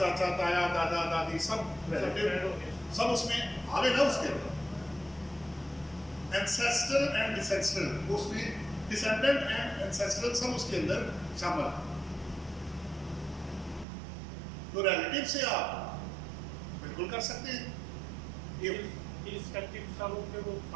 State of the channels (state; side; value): drops out; left; at 13.9 s